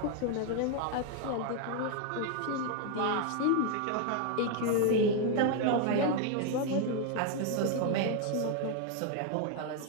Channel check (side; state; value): both; different; correlation 0.01